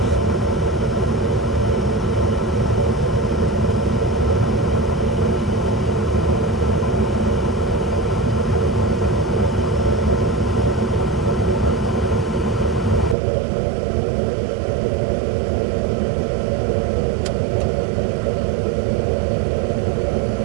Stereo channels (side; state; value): left; drops out; at 13.2 s